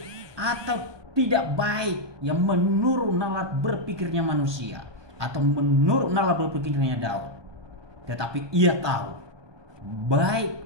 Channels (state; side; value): late; left; 1.2 ms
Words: atau tidak baik, yang menurut nalar berpikirnya manusia atau menurut nalar berpikirnya Daud, tetapi ia tahu